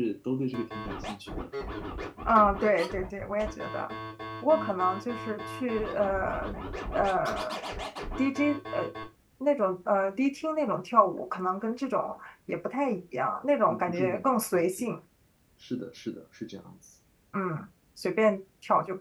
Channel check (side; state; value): both; identical; correlation 1.00